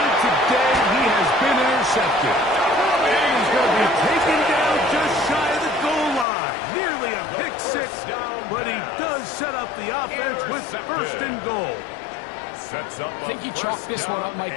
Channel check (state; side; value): drops out; right; at 6.2 s